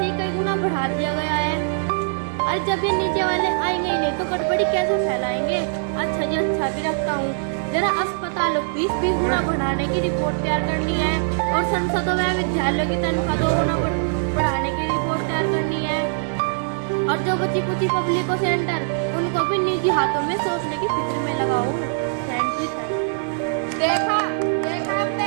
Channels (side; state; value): left; silent; digital silence